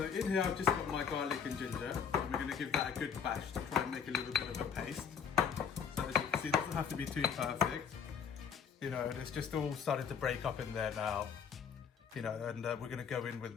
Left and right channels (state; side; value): quieter; right; 7.1 dB